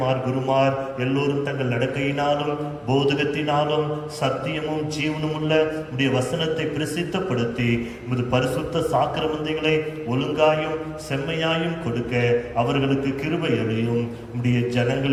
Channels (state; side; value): identical; both; correlation 1.00